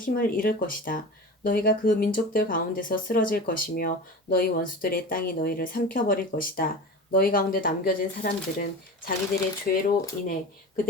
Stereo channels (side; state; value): both; normal; correlation 0.32